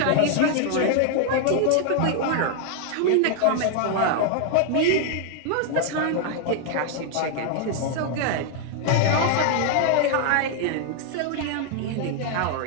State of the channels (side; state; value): both; different; correlation 0.00